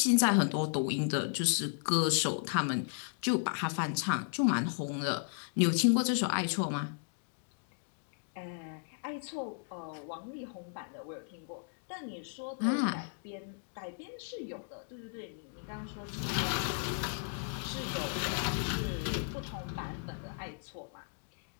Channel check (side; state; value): right; silent; digital silence